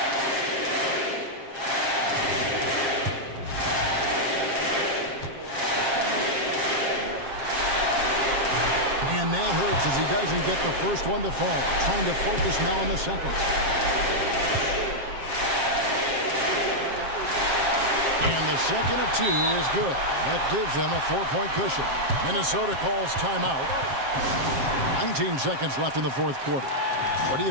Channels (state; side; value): late; left; 7.5 ms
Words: And that hurts as he doesn't get the first one to fall. Trying to focus now on the second. And the second of 2 is good. That gives them a 4-point cushion. Minnesota calls timeout. 19 seconds left in the fourth quarter. What do